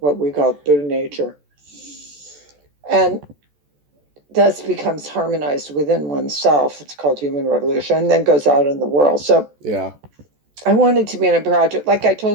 we call Buddha nature, and thus becomes harmonized within oneself. It's called human revolution, and then goes out in the world. So Yeah. I wanted to be in a project, like I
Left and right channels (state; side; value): late; left; 14 ms